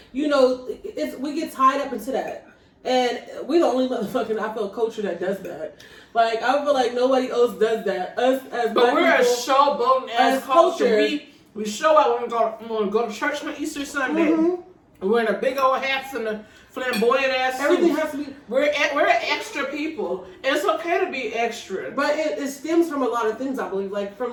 you know, we get tied up into that. And we're the only motherfucking, I feel, culture that does that. Like, I feel like nobody else does that. Us as But we're people, a showboating as culture. We show out when we go to church on Easter Sunday. Mm-hmm. We're in a big old hats and a flamboyant ass suit. Everything has to be. We're extra people. And it's okay to be extra. But it stems from a lot of things, I believe. Like, from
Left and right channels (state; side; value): identical; both; correlation 1.00